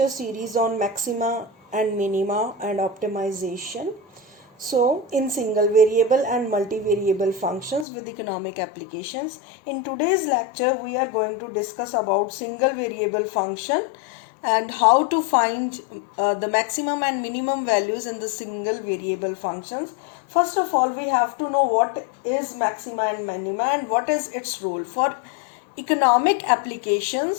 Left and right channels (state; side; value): drops out; right; at 7.9 s